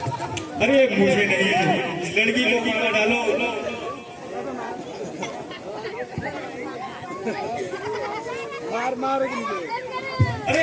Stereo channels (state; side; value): identical; both; correlation 1.00